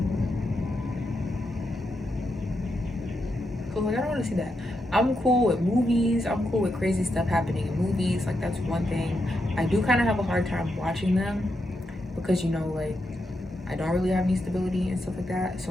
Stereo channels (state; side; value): normal; both; correlation 0.84